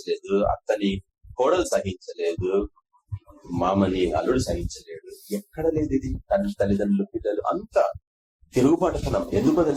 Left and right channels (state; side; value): identical; both; correlation 1.00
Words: అత్తని కోడలు సహించలేదు, మామని అల్లుడు సహించలేడు. ఎక్కడ లేదు ఇది. తల్లిదండ్రులు పిల్లలు అంతా తిరుగుబాటుతనం. ఎందుకో